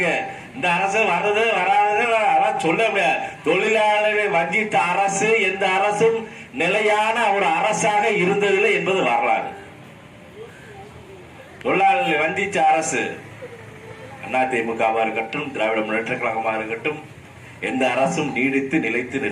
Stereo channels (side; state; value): both; identical; correlation 1.00